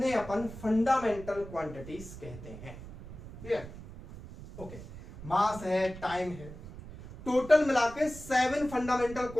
अपन फंडामेंटल क्वांटिटीज कहते हैं। क्लियर? ओके, मास है, टाइम है, टोटल मिलाके 7 फंडामेंटल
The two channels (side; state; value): right; noise; rumble, 14 dB below the sound